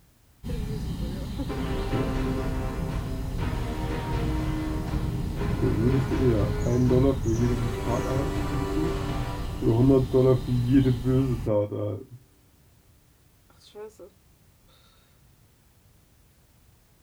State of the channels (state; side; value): identical; both; correlation 1.00